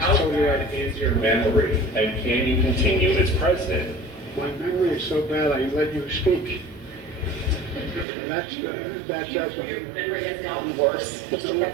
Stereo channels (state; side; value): drops out; left; at 8.1 s